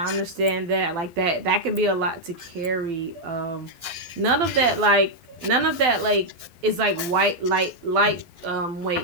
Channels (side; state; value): left; late; 11 ms